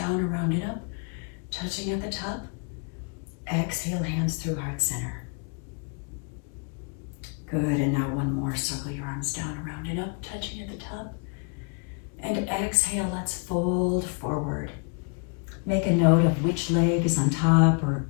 around and up, touching at the top. Exhale, hands through heart center. Good, and now 1 more. Circle your arms down, around and up, touching at the top. And exhale, let's fold forward. Make a note of which leg is on top or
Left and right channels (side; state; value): right; quieter; 38.1 dB